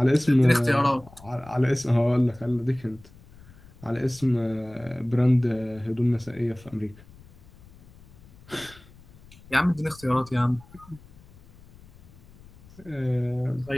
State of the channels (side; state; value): left; noise; rumble, 23 dB below the sound